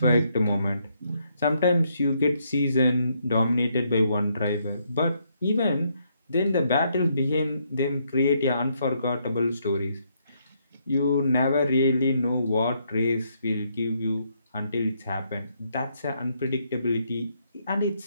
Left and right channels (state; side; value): inverted; both; correlation -0.74